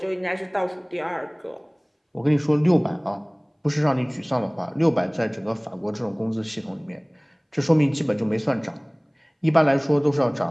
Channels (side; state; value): both; identical; correlation 1.00